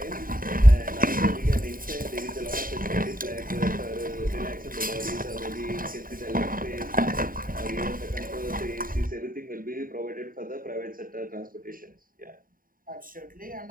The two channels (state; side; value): late; left; 0.41 ms